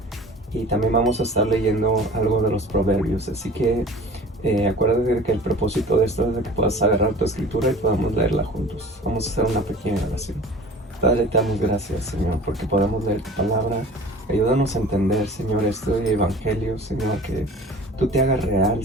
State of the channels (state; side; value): normal; both; correlation 0.42